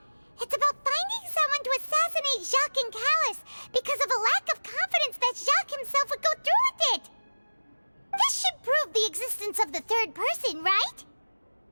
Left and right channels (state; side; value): inverted; both; correlation -1.00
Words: it's about finding someone to assassinate Jacques and Callus because of a lack of confidence that Jacques himself would go through with it. This should prove the existence of the third person, right?